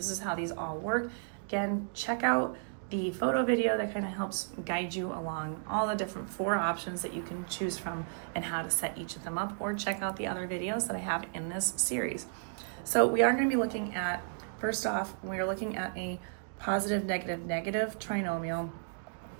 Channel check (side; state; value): left; silent; digital silence